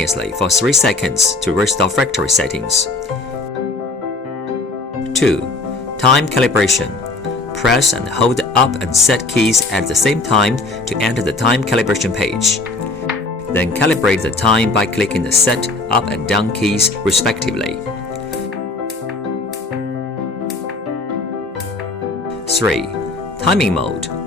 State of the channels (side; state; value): right; quieter; 3.3 dB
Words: for 3 seconds to restore factory settings. 2. Time calibration. Press and hold the up and set keys at the same time to enter the time calibration page. Then calibrate the time by clicking the set, up and down keys respectively. 3. Timing mode.